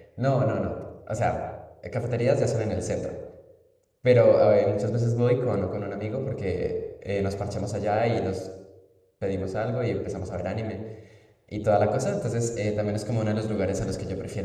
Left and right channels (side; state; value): both; identical; correlation 1.00